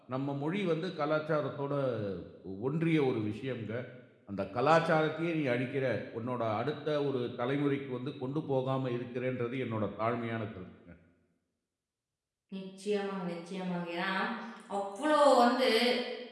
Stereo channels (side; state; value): both; identical; correlation 1.00